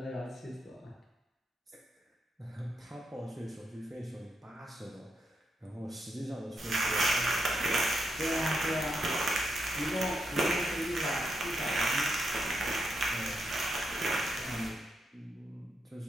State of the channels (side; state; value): both; normal; correlation 0.82